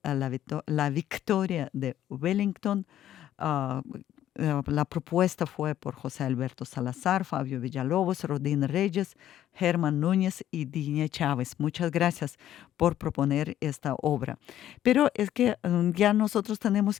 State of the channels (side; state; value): right; quieter; 11.9 dB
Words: la victoria de Wellington. La propuesta fue por José Alberto Salazar, Fabio Villalobos, Rodín Reyes, Germán Núñez y Digne Chávez. Muchas gracias por proponer esta obra. Pero es que ya nosotros tenemos